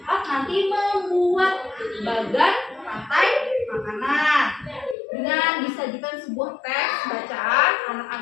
nanti membuat bagan rantai makanan. Dengan disajikan sebuah teks bacaan,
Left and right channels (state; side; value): drops out; right; at 5.0 s